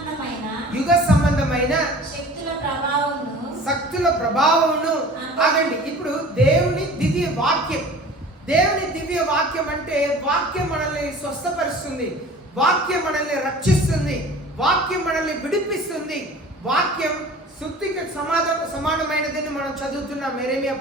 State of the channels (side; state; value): both; normal; correlation 0.43